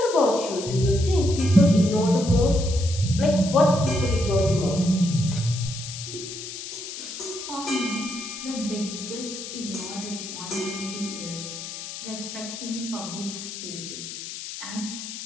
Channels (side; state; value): left; noise; hiss, 9 dB below the sound